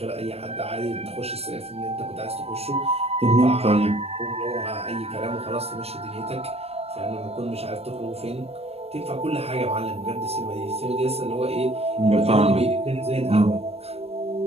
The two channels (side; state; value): left; late; 0.29 ms